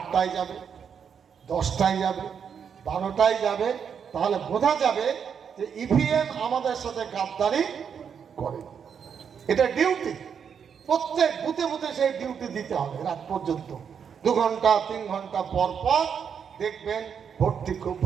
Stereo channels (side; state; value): left; quieter; 7.2 dB